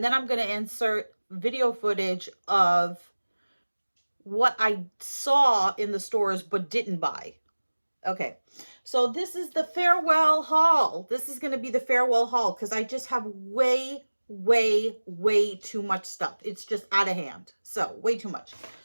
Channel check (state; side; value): inverted; both; correlation -1.00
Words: then I'm going to insert video footage of what I saw in the stores but didn't buy. Okay. So this is the farewell haul. This is going to be the farewell haul because I just have way too much stuff. It's just out of hand. So way too much.